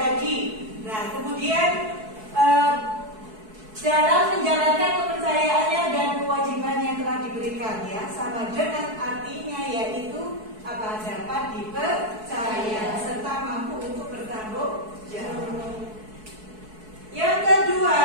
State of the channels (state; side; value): late; left; 4.6 ms